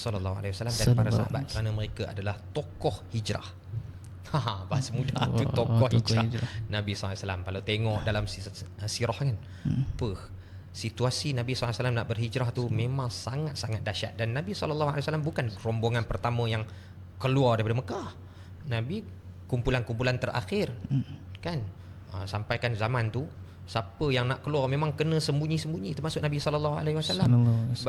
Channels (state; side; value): identical; both; correlation 1.00